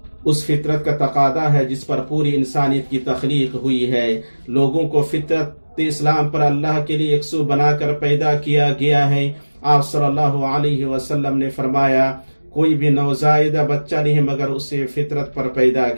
اس فطرت کا تقاضا ہے جس پر پوری انسانیت کی تخلیق ہوئی ہے۔ لوگوں کو فطرت اسلام پر اللہ کے لیے یکسو بنا کر پیدا کیا گیا ہے۔ آپ صلی اللہ علیہ وسلم نے فرمایا، کوئی بھی نوزائیدہ بچہ نہیں مگر اسے فطرت پر پیدا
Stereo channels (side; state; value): both; inverted; correlation -1.00